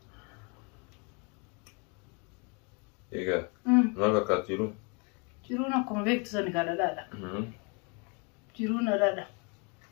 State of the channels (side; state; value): right; quieter; 33.6 dB